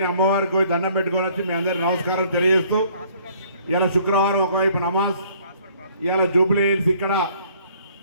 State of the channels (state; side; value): inverted; both; correlation -0.60